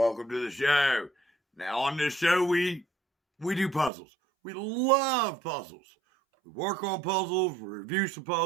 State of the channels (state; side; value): drops out; left; at 3.9 s